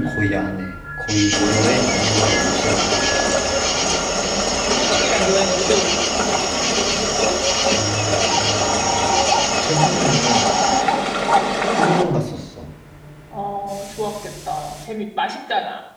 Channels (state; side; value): identical; both; correlation 1.00